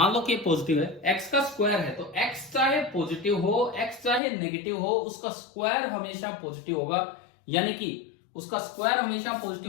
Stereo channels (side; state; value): right; drops out; at 4.2 s